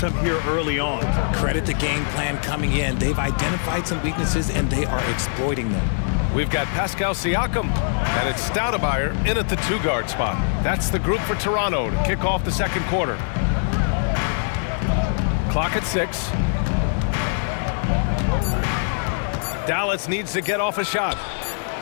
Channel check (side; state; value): right; silent; digital silence